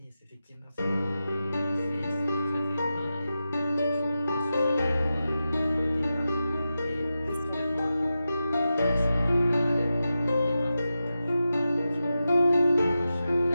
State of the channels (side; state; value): both; inverted; correlation -0.91